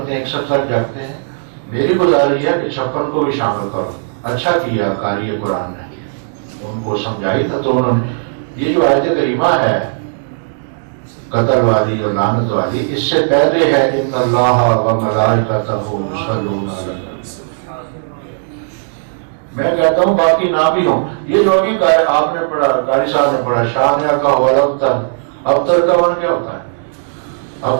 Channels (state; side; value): silent; left; digital silence